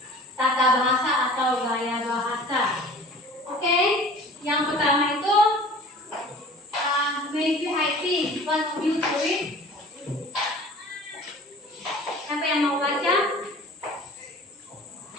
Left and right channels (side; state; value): both; normal; correlation 0.44